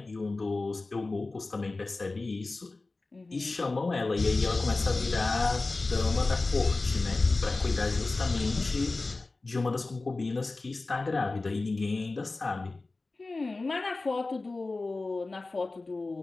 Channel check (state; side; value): quieter; right; 3.4 dB